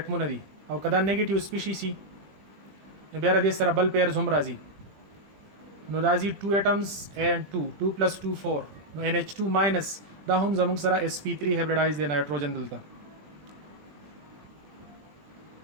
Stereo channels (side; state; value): left; late; 20 ms